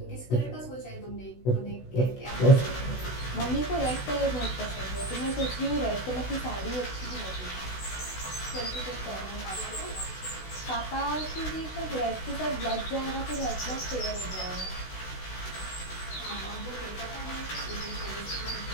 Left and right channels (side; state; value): right; late; 16 ms